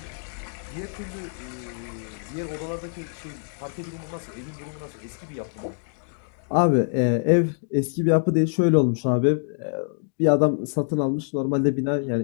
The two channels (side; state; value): right; silent; digital silence